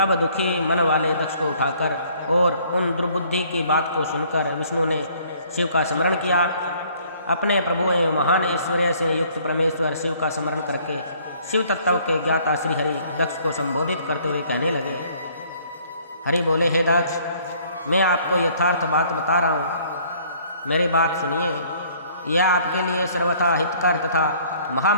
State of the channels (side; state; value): both; inverted; correlation -0.59